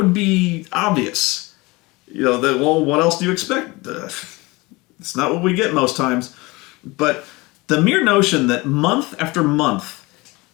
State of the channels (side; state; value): right; quieter; 23.3 dB